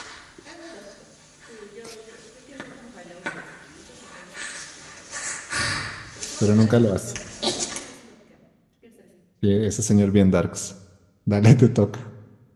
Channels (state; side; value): identical; both; correlation 1.00